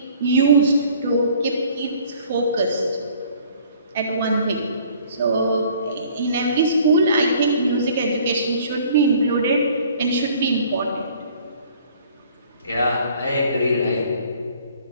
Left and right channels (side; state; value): both; inverted; correlation -0.54